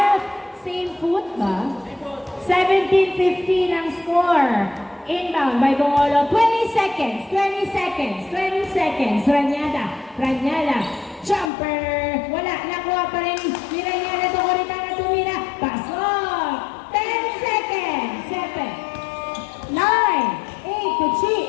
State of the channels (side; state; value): right; drops out; at 11.5 s